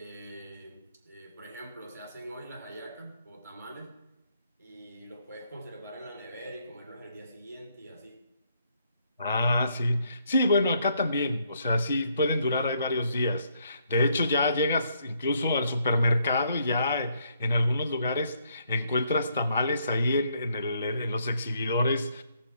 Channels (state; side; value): inverted; both; correlation -0.71